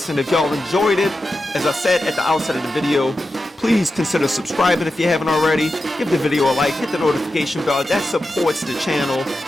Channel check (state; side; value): normal; both; correlation 0.91